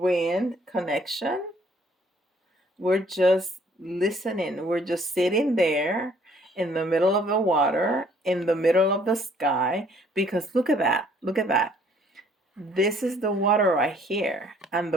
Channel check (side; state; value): both; normal; correlation 0.61